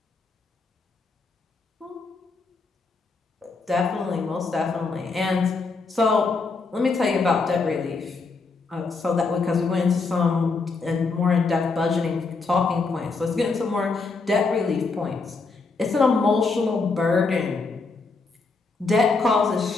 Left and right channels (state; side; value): quieter; right; 4.2 dB